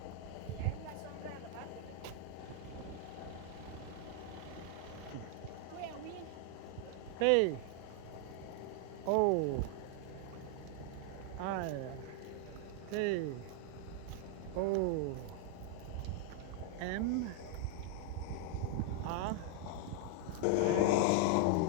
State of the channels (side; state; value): both; different; correlation 0.00